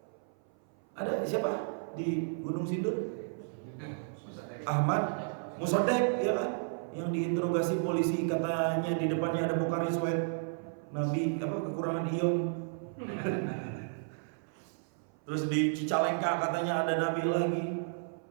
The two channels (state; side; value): silent; left; 56 dB below the other